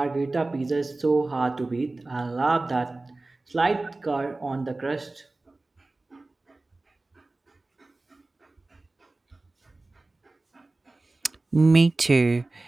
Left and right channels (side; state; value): left; quieter; 3.1 dB